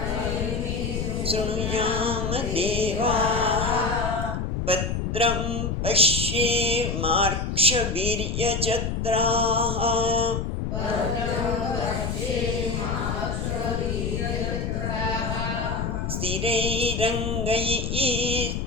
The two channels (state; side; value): noise; left; rumble, 2 dB below the sound